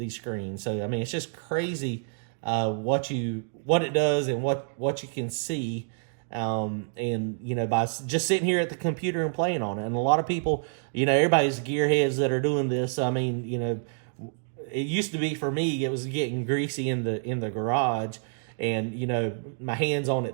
screens. So, I mean, it's just crazy what it does and what you can see. And, you know, by just sitting here at the computer and playing on it. And a lot of people, you know, everybody's gearheads that are doing this. I mean, you know, it used to be for me, it was getting greasy in the garage, and, you know, my hands on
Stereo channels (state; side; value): silent; left; digital silence